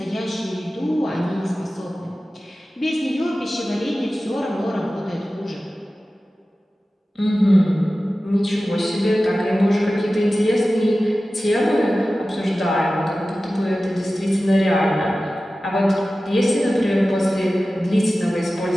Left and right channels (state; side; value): normal; both; correlation 0.95